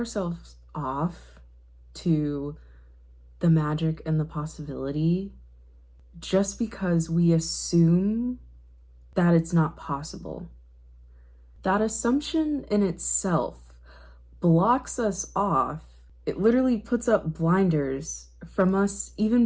off to the magic and the possibility just because we assume that it's not possible. That assumption in itself blocks us off. It literally puts up blinders from us even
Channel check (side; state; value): both; identical; correlation 1.00